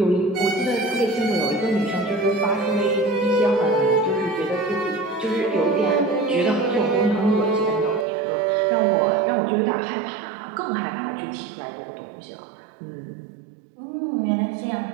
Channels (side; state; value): left; drops out; at 8.1 s